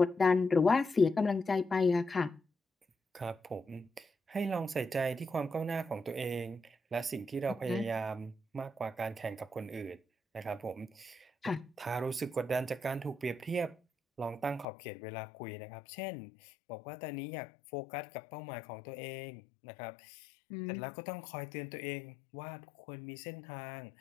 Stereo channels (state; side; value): drops out; right; at 14.7 s